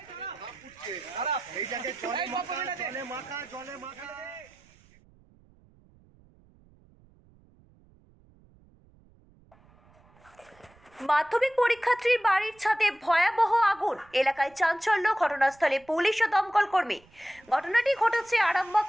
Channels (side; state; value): right; noise; rumble, 29 dB below the sound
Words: জলে মাখা মাধ্যমিক পরীক্ষার্থীর বাড়ির ছাদে ভয়াবহ আগুন, এলাকায় চাঞ্চল্য, ঘটনাস্থলে পুলিশ ও দমকল কর্মী। ঘটনাটি ঘটেছে আরামবাগ